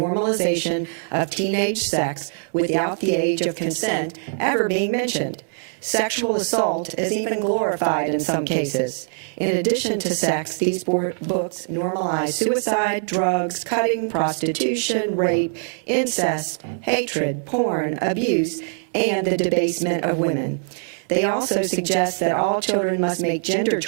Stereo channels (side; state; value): left; silent; 64 dB below the other